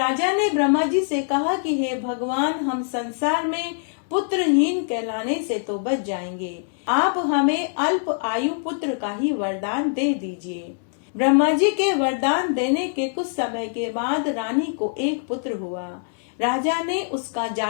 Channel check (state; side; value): silent; right; 63 dB below the other